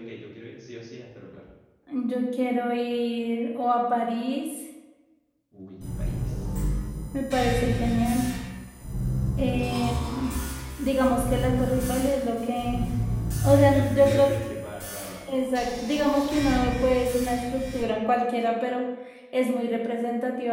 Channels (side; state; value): both; identical; correlation 1.00